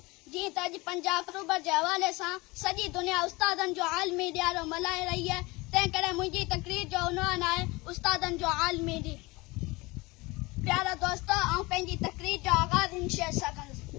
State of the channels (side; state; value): right; quieter; 23.3 dB